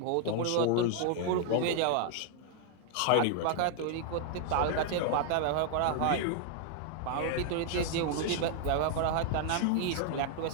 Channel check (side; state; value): both; different; correlation 0.00